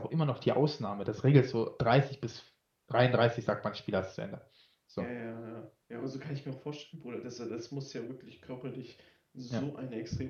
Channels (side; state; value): both; identical; correlation 1.00